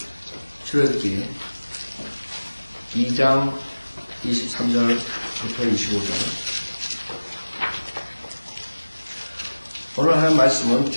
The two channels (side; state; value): both; inverted; correlation -1.00